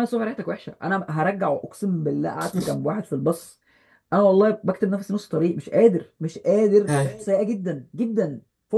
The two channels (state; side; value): identical; both; correlation 1.00